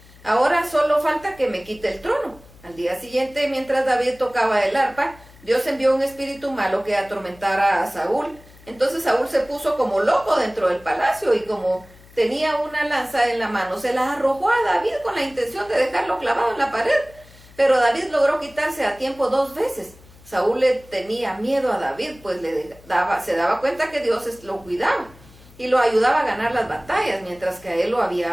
Ahora solo falta que me quite el trono. Al día siguiente, mientras David tocaba el arpa, Dios envió un espíritu malo que atormentara a Saúl. Entonces Saúl se puso como loco dentro del palacio y como tenía una lanza en la mano, se la arrojó a David con la intención de dejarlo clavado en la pared. Pero David logró quitarse a tiempo 2 veces. Saúl le tenía miedo a David, pues se daba cuenta que Dios lo cuidaba y lo ayudaba a ganar las batallas, mientras que a él lo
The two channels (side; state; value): left; noise; hum, 24 dB below the sound